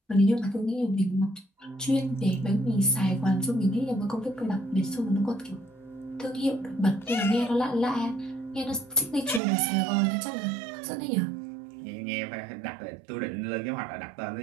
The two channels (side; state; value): left; drops out; at 9.4 s